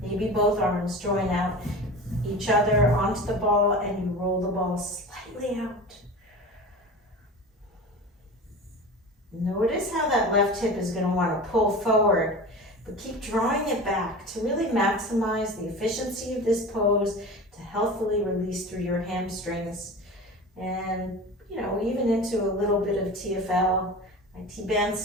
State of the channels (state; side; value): normal; both; correlation 0.33